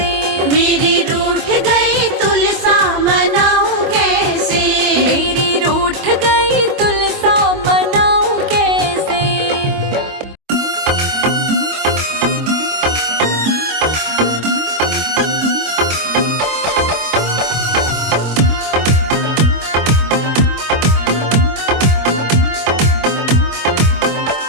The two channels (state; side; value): late; left; 25 ms